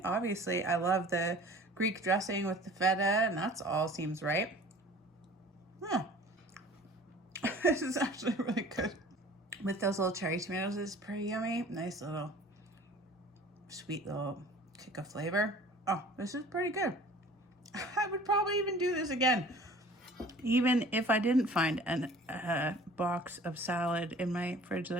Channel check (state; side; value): normal; both; correlation 0.47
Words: Obviously, I love the Greek dressing with the feta, and that's all seems right. Yeah. This is actually really good. With those little cherry tomatoes, it's pretty yummy. Nice little sweet little kick of flavor. Oh, this is pretty good. I would probably even do this again, even if I didn't find a box of salad in my fridge that